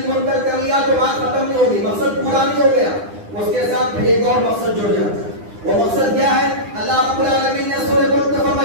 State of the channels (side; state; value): left; late; 9.9 ms